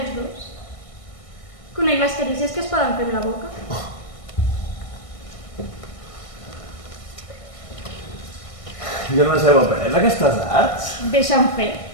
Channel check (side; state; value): right; late; 1.6 ms